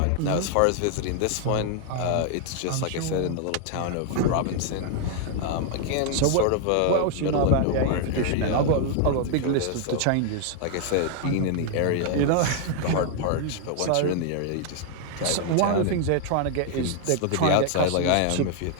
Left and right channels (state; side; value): different; both; correlation 0.00